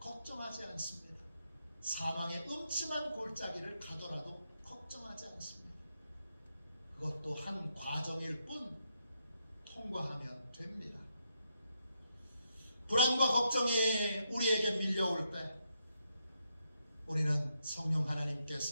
않습니다. 사망의 음침한 골짜기를 가더라도 걱정하지 않습니다. 그것도 한 과정일 뿐 통과하면 됩니다. 불안과 걱정이 우리에게 밀려올 때 우리는 성령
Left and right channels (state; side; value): inverted; both; correlation -0.80